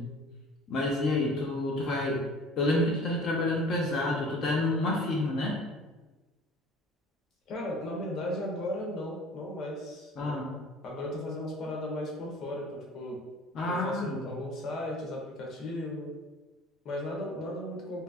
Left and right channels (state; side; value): normal; both; correlation 0.46